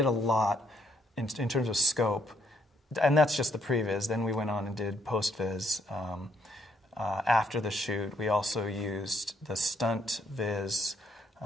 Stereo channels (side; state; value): both; normal; correlation 0.71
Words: a lot in terms of scope, and that's just the previs. Then we went on and did post-viz. After the shoot, we also used the stunt